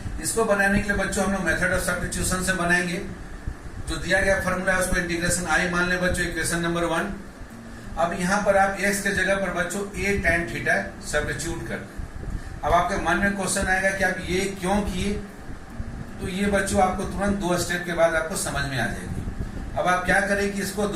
इसको बनाने के लिए बच्चों हम लोग मेथड ऑफ सब्स्टिट्यूशन से बनाएंगे। जो दिया गया फॉर्मूला है उसको इंटीग्रेशन आई मान ले बच्चों, इक्वेशन नंबर 1। अब यहाँ पर आप x के जगह पर बच्चों a tan थीटा सब्स्टिट्यूट कर दें। अब आपके मन में क्वेश्चन आएगा कि आप ये क्यों किए, तो ये बच्चों आपको तुरंत 2 स्टेप के बाद आपको समझ में आ जाएगी। अब आप क्या करें कि इसको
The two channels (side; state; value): both; identical; correlation 1.00